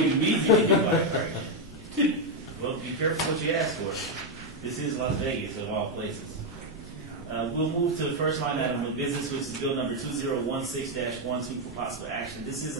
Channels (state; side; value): normal; both; correlation 0.03